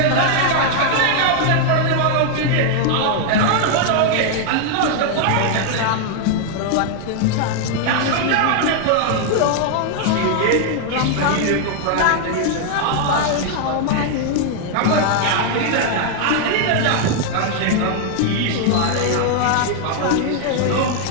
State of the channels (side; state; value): both; different; correlation 0.00